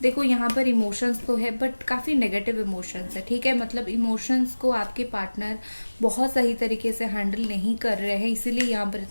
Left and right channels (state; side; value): inverted; both; correlation -1.00